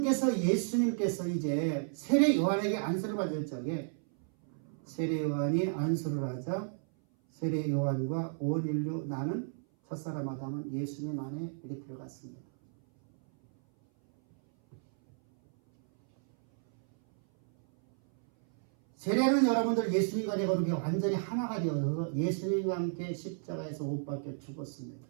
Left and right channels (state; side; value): silent; left; 56 dB below the other